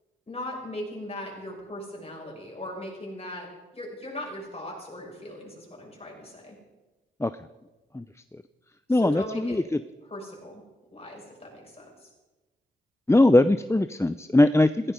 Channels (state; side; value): normal; both; correlation 0.91